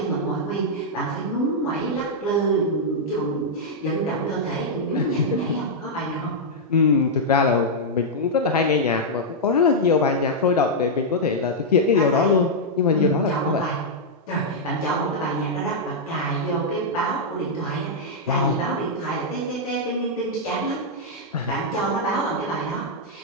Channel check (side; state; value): both; normal; correlation -0.06